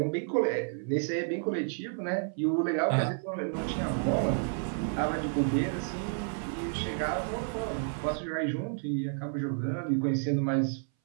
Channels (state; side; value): silent; left; 57 dB below the other